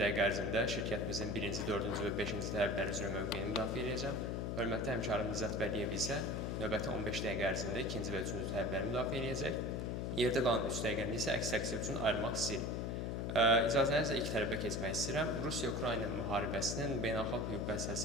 ərzində şirkətimizin 1-ci, 4-cü və 5-ci tələbləri üzrə mövqeyini müdafiə edəcəm. Hörmətli həmkarım Nicat Vəliyev isə növbəti 15 dəqiqə ərzində 2-ci və 3-cü tələbləri müdafiə edəcək. Yerdə qalan 3 dəqiqəni isə əks təqsir üçün ayırmaq istəyirik. İcazənizlə ilk tələbə keçmək istəyirəm. Rusiya-Ukrayna müharibəsinin beynəlxalq hüquqa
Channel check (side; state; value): left; noise; hum, 1 dB below the sound